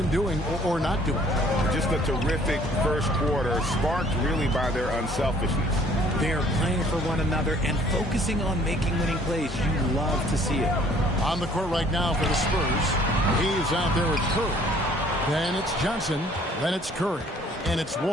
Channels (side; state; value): both; normal; correlation 0.58